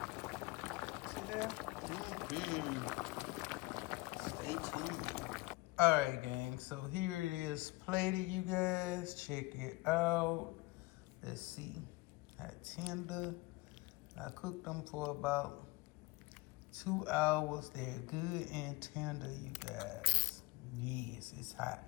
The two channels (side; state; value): right; quieter; 22.3 dB